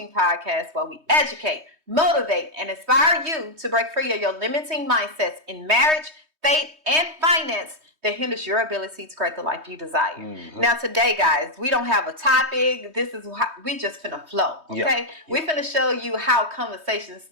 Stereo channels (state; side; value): late; left; 3.2 ms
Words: podcast where we educate, motivate, and inspire you to break free of your limiting mindsets in marriage, faith, and finance that hinders your ability to create the life you desire. Mm-hmm. Now today, guys, we don't have a topic. This is how we just finna flow, okay? We finna show you how Conversations